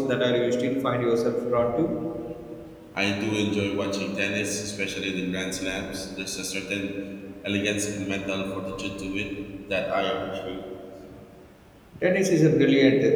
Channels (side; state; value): both; identical; correlation 1.00